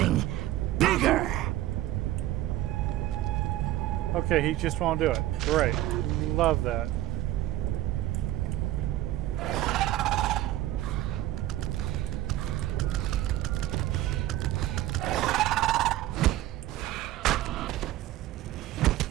bigger. Okay, he just won't do it. Great. Love that.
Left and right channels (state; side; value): quieter; left; 15.3 dB